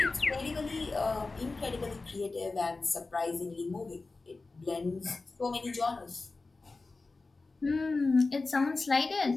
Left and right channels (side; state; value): right; quieter; 3.7 dB